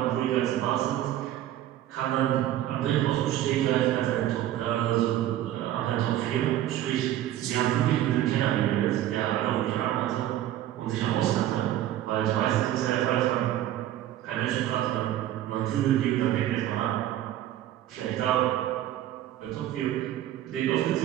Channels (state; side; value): quieter; left; 12.9 dB